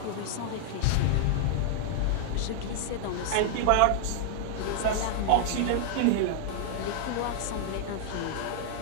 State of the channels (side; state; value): both; different; correlation -0.01